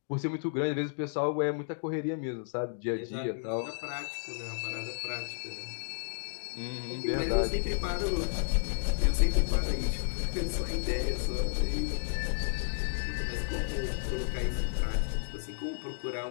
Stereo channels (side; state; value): right; silent; digital silence